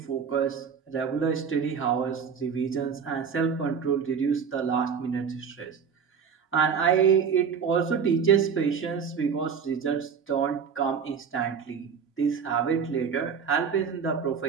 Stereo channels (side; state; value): left; quieter; 6.6 dB